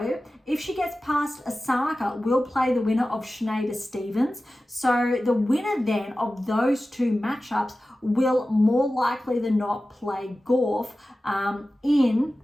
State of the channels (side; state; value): both; normal; correlation 0.95